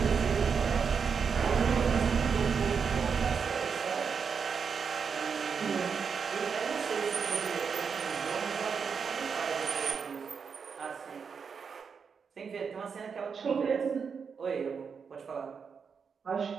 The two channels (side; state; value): left; quieter; 6.1 dB